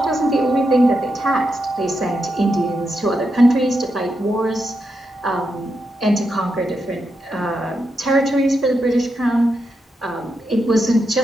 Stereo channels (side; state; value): both; normal; correlation 0.85